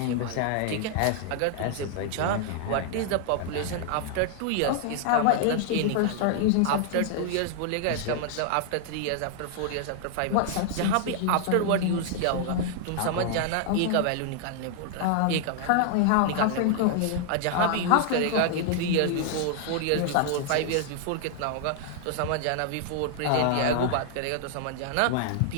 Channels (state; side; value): different; both; correlation 0.00